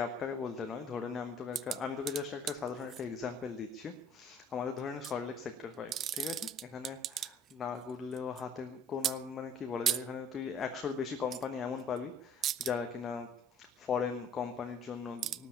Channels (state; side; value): normal; both; correlation 0.55